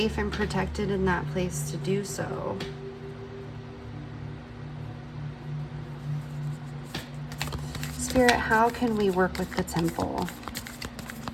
and protected in that place to do so. Spirit, how can we work with the Temple?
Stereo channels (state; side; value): identical; both; correlation 1.00